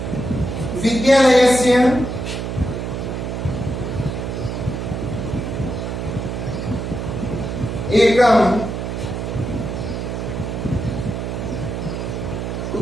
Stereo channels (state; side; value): noise; right; hum, 4 dB below the sound